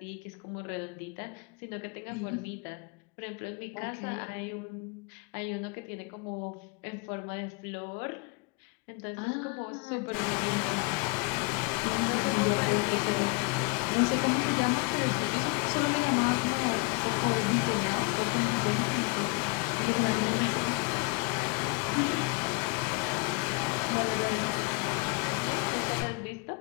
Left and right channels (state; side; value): quieter; right; 27.4 dB